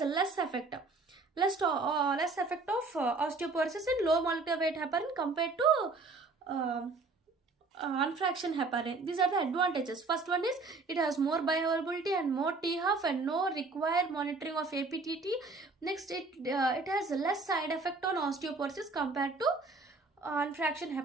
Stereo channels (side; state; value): left; quieter; 3.7 dB